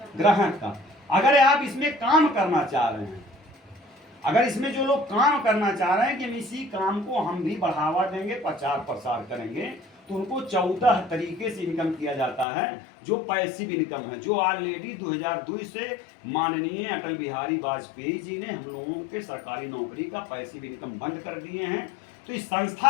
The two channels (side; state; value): right; drops out; at 12.5 s